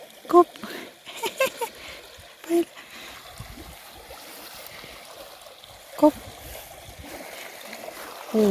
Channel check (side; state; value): both; identical; correlation 1.00